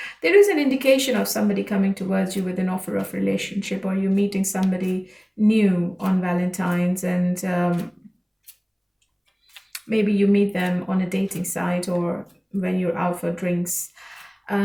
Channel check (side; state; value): both; identical; correlation 1.00